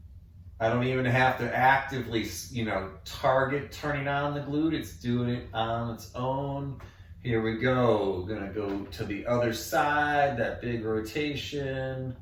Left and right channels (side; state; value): both; identical; correlation 1.00